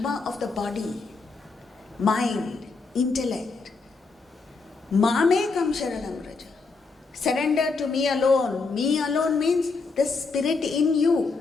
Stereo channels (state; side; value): quieter; right; 4.2 dB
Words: of the body, mind, intellect. Mamekam sharanam raja. Surrender to me alone. Me alone means the spirit in